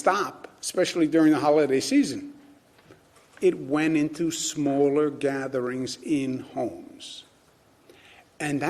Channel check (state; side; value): identical; both; correlation 1.00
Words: especially during the holiday season. It went into smaller gatherings in homes. And